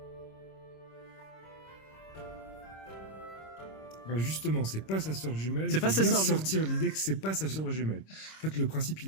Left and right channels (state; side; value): late; right; 26 ms